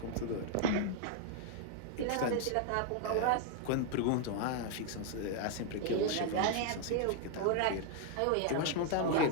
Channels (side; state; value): both; different; correlation 0.00